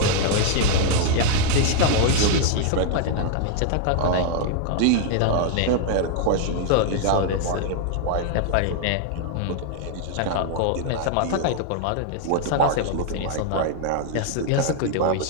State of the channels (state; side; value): different; both; correlation 0.00